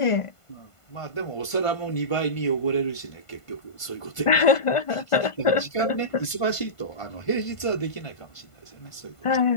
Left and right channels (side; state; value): right; late; 1.5 ms